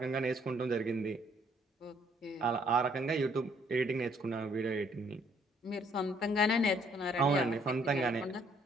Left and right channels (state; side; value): normal; both; correlation 0.65